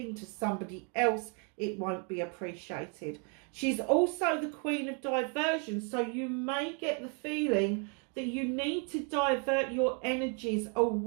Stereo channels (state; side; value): quieter; left; 38.3 dB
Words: to somebody else. It won't be appreciated. She's also the Queen of Diversion, so you may get the feeling that you need to divert your energies